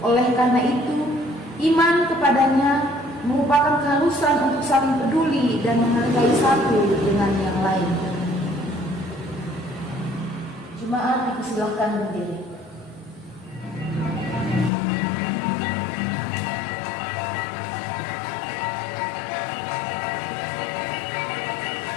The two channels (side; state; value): right; drops out; at 14.7 s